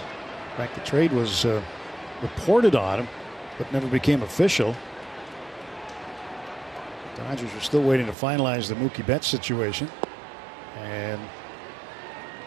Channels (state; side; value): drops out; left; at 8.2 s